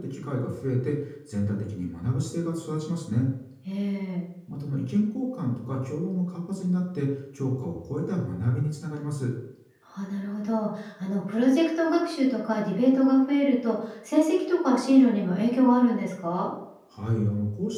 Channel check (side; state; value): both; identical; correlation 1.00